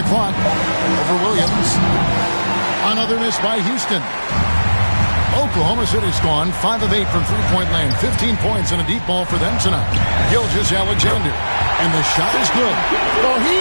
clock. Over Williams. Another miss by Houston. Oklahoma City's gone 5 of 8 from three-point land. 15 points and a deep ball for them tonight. Gilgeous-Alexander. And the shot is good. Well, he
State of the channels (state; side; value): inverted; both; correlation -1.00